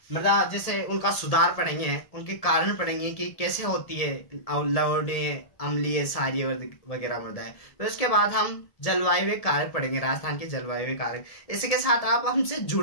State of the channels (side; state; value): right; late; 1.7 ms